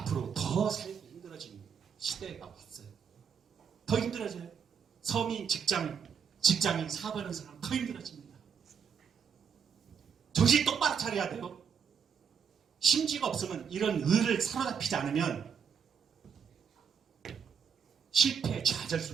더 살기 힘들어지는 시대가 왔어요. 더 힘들어져요. 서민, 직장인, 사업하는 사람 더 힘들어집니다. 정신 똑바로 차려야 돼요. 심지가 없으면 이런 의를 사로잡히지 않으면 실패, 좌절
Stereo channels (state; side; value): quieter; left; 7.0 dB